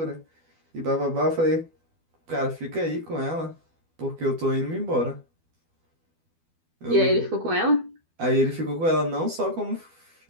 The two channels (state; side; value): late; left; 12 ms